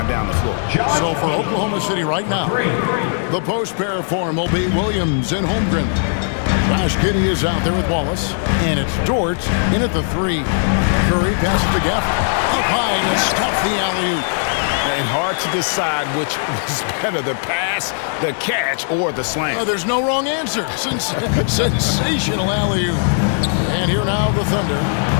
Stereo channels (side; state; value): right; silent; 67 dB below the other